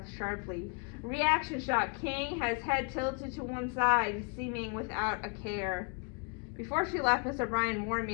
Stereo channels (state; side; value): quieter; right; 35.3 dB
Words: sharply. Reaction shot. King has head tilted to one side, seeming without a care. Before she left, Miss O'Brien warned